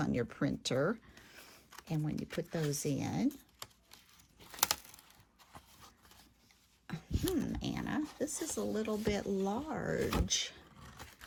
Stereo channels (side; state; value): both; identical; correlation 1.00